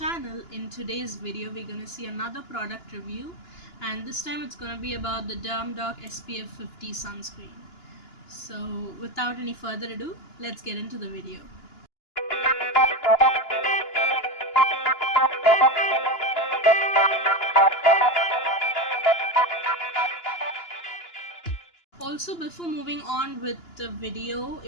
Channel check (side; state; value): right; late; 2.9 ms